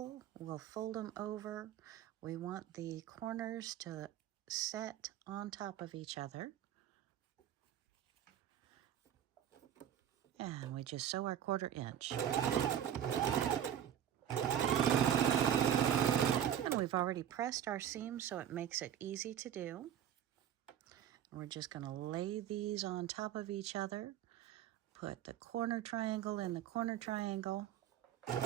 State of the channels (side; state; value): left; quieter; 10.2 dB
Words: we'll fold them over. We want the corners to set on top of each other. And we just sew our 1/4 inch. And we've already pressed our seam, so it makes it easy to do. We're just going to lay these on top of each other. Put the corner triangle in the corner triangle. And